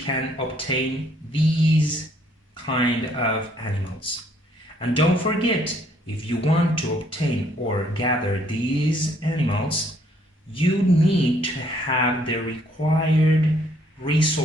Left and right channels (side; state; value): both; normal; correlation 0.66